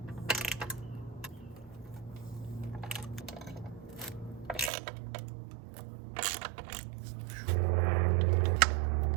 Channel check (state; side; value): drops out; left; at 4.7 s